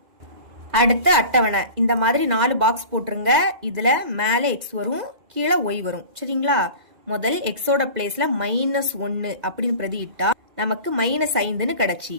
அடுத்து அட்டவணை. இந்த மாதிரி 4 பாக்ஸ் போட்டுருங்க. இதுல மேல எக்ஸ் வரும், கீழே ஒய் வரும். சரிங்களா? முதல் எக்ஸோட பிளேஸ்ல -1 அப்படின்னு பிரதியிட்டா நமக்கு -5ன்னு கிடைச்சி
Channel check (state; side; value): late; left; 2.0 ms